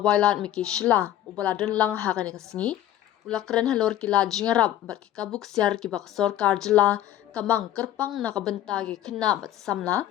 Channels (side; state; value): right; quieter; 12.3 dB